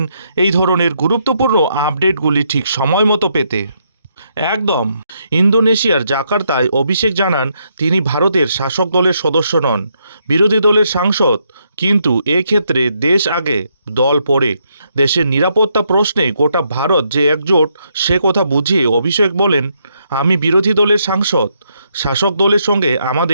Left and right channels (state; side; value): inverted; both; correlation -0.77